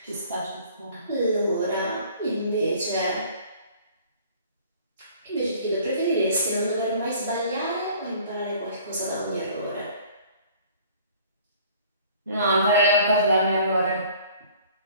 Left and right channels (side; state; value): both; inverted; correlation -0.51